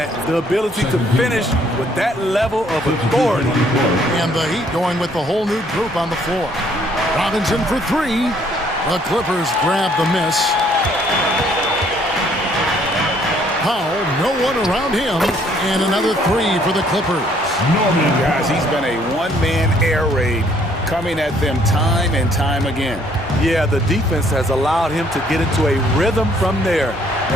the ability to finish with that level of authority. And the Heat going with the whole new group on the floor. Robinson for 3. The Clippers grab the miss. Powell, no one around him, and another 3 for the Clippers. Guys, he's been a one-man air raid coming at them time and time again. Yeah, the defense has allowed him to get into a rhythm from there,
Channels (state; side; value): normal; both; correlation 0.64